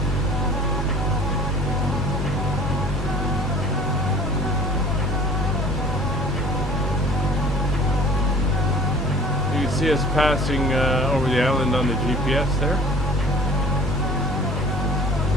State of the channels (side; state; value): both; normal; correlation 0.48